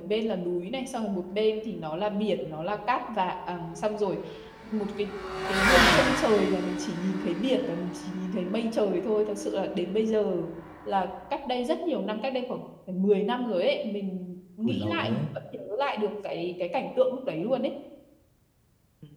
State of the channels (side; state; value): both; identical; correlation 1.00